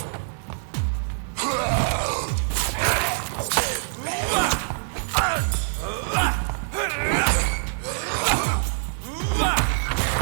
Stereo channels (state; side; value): silent; left; 58 dB below the other